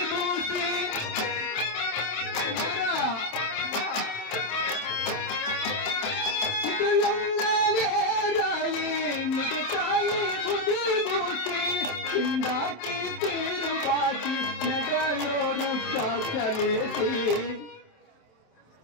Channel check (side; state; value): right; late; 27 ms